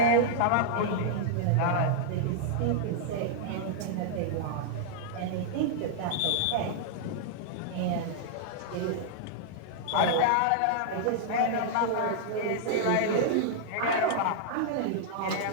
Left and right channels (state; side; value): different; both; correlation -0.01